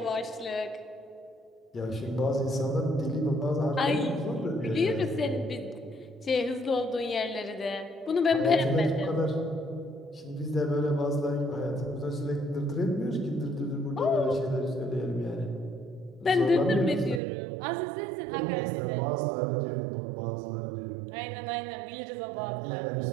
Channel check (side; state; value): left; drops out; at 17.2 s